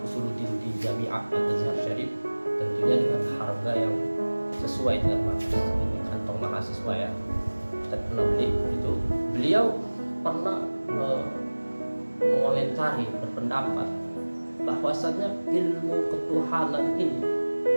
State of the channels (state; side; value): inverted; both; correlation -1.00